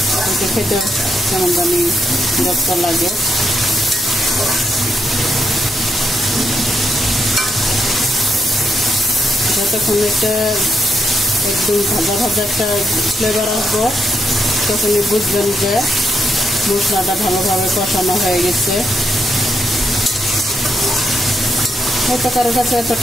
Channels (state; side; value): normal; both; correlation 0.79